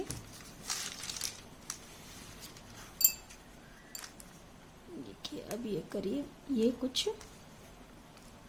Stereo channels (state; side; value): identical; both; correlation 1.00